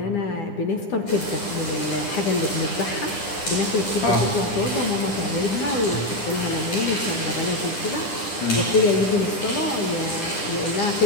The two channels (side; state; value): right; late; 9.9 ms